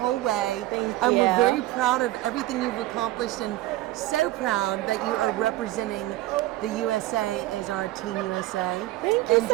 way. Thank We're you. very proud of everything you've accomplished and so proud that you are representing the USA as our Team USA. Thank you and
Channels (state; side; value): quieter; left; 16.9 dB